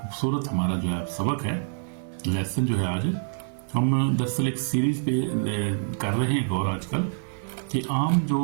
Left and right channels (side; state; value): left; silent; digital silence